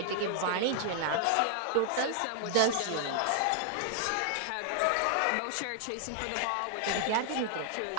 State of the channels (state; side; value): different; both; correlation 0.00